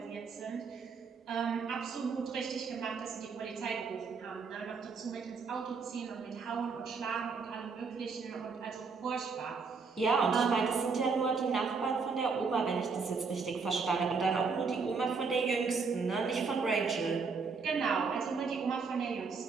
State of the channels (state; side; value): quieter; left; 4.9 dB